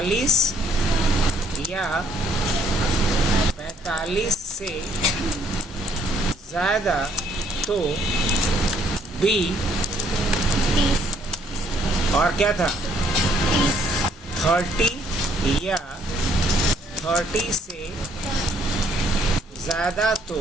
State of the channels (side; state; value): both; normal; correlation 0.65